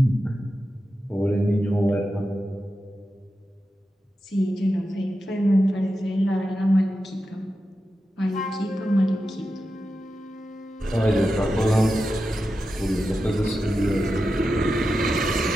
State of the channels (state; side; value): normal; both; correlation 0.90